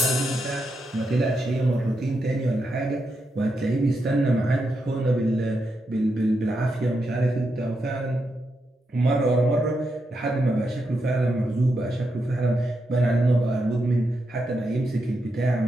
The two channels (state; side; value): normal; both; correlation 0.84